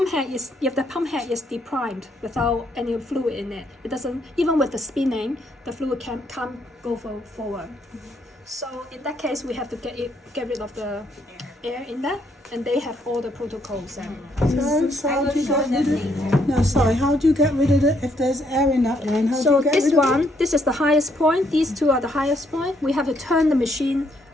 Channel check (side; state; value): both; normal; correlation 0.72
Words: head is, if the pump head is deprimed without any fluid in it, it doesn't, even with the spinning, the fluid can't go forward. So in that case, we have to get rid of the air in there, and they have all the protocols. So how do you get rid of it? No, sorry, how do you get rid of it if there's air in that line? How do So you get this rid of one, this is the highest point. These two are the highest point. We have to turn the machine